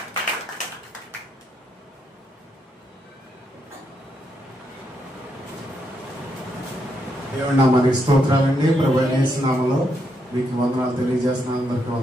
దేవుని నామానికి స్తోత్రాలండి. ప్రభువైన యేసు నామములో మీకు వందనాలు తెలియజేస్తున్నాను. అందరికీ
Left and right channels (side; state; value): both; normal; correlation 0.79